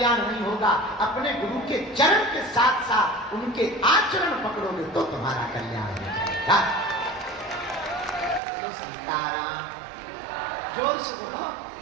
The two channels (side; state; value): left; drops out; at 8.4 s